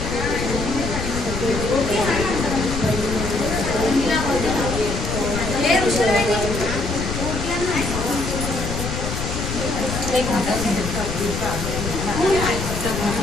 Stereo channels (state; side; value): noise; left; rumble, 4 dB below the sound